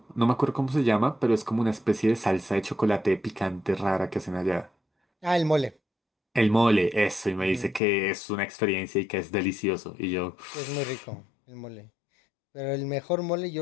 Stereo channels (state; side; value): drops out; right; at 7.8 s